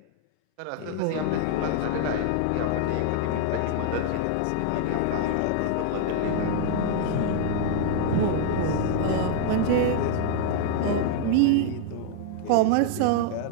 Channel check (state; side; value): different; both; correlation 0.00